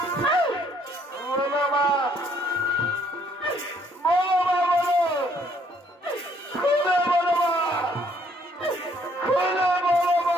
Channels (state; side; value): normal; both; correlation 0.65